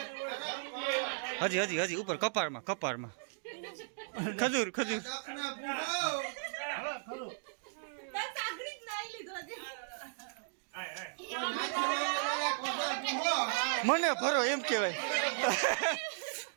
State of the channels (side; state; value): left; silent; digital silence